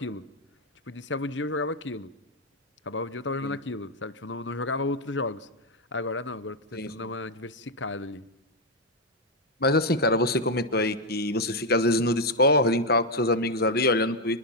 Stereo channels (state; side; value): normal; both; correlation 0.04